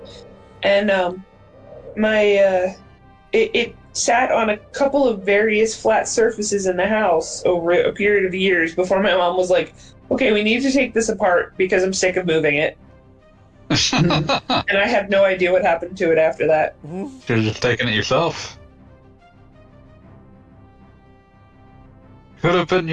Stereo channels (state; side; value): identical; both; correlation 1.00